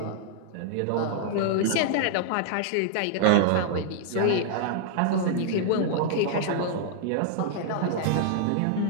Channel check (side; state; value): both; different; correlation -0.01